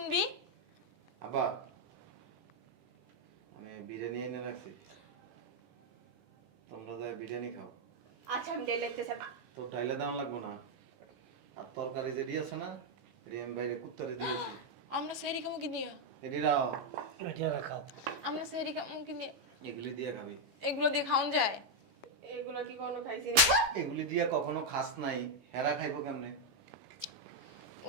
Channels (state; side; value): late; left; 16 ms